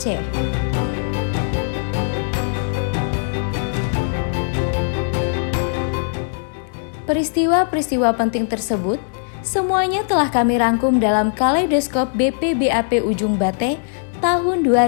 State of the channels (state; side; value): silent; right; digital silence